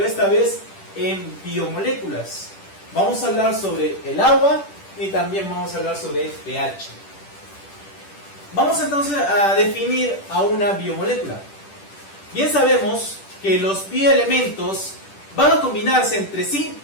esta vez en biomoléculas. Vamos a hablar sobre el agua y también vamos a hablar sobre el pH. Vamos entonces a definir a una biomolécula. Bien sabemos que los bioelementos van a combinarse entre sí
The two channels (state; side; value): late; right; 10 ms